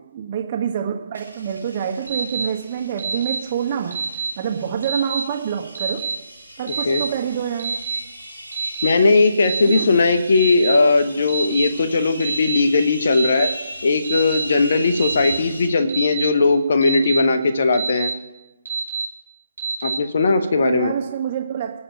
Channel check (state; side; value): inverted; both; correlation -0.79